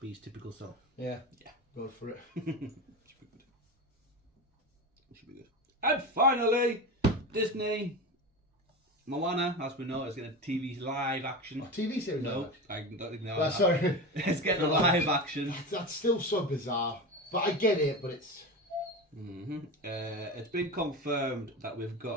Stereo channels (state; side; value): normal; both; correlation 0.24